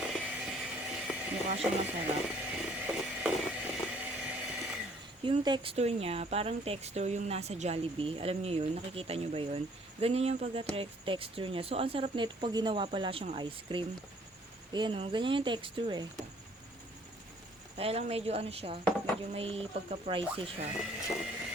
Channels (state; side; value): normal; both; correlation 0.60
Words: Mukha siyang masarap. Yung texture niya, parang texture yung nasa Jollibee. Alam niyo yun? Nakikita niyo ba yun? Ganyan yung pagka-texture niya. So, ang sarap nito pag ginawa pala siyang ice cream. Ayan o, ganyan yung texture eh. Kaya lang medyo ano siya, medyo may pagka-pricey siya.